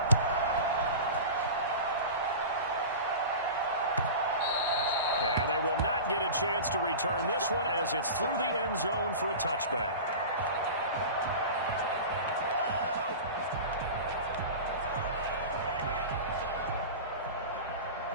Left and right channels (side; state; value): both; inverted; correlation -0.32